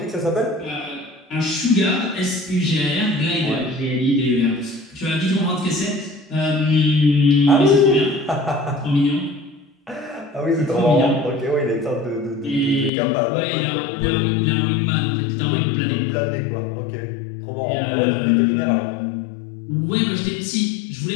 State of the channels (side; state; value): right; drops out; at 12.9 s